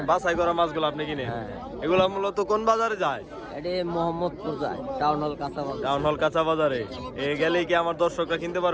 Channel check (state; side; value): identical; both; correlation 1.00